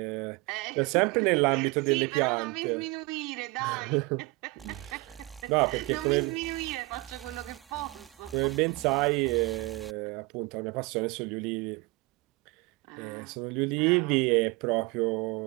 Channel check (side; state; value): left; quieter; 23.8 dB